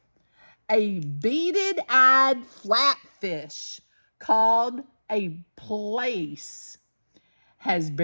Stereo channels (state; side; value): inverted; both; correlation -1.00